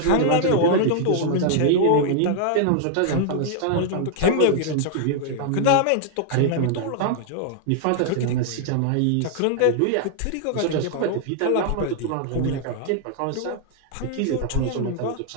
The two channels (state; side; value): different; both; correlation 0.00